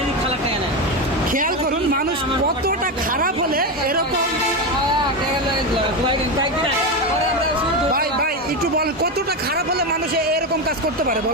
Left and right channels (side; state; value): both; normal; correlation 0.14